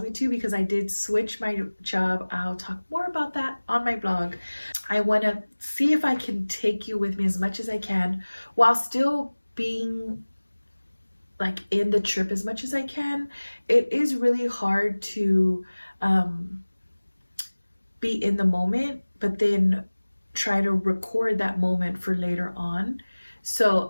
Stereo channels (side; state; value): both; inverted; correlation -1.00